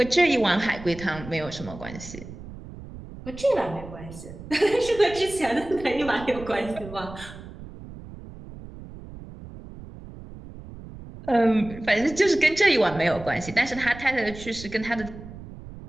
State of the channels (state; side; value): noise; right; rumble, 14 dB below the sound